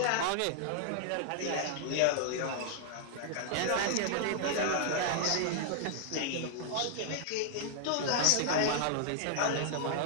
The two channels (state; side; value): different; both; correlation -0.01